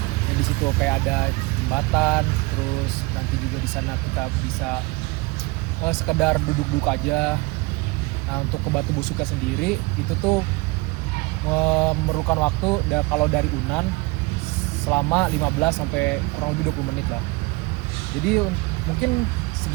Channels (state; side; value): quieter; left; 24.6 dB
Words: Dan di situ kayak ada jembatan, terus nanti juga di sana kita bisa sekedar duduk-duduk aja. Nah, untuk ke Batu Busuknya sendiri itu tuh memerlukan waktu kalau dari Unan selama 15 sampai kurang lebih 20 menit lah. Jadi mungkin